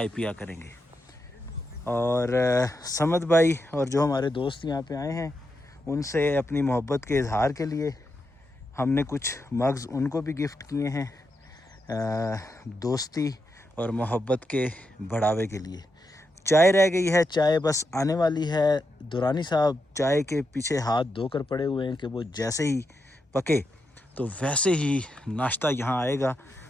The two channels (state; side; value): normal; both; correlation 0.85